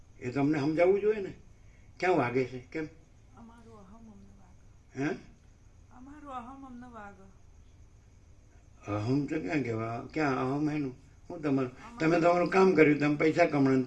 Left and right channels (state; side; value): identical; both; correlation 1.00